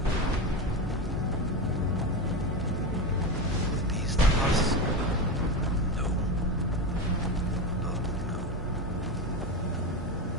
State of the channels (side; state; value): both; normal; correlation 0.19